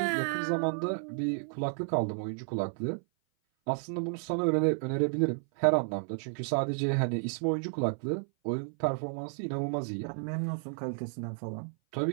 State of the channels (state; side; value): silent; left; 56 dB below the other